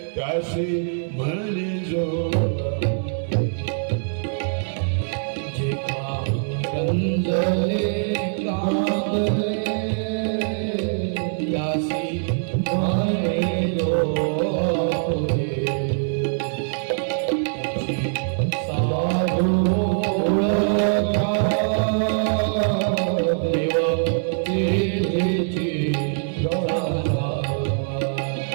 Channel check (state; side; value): silent; left; 63 dB below the other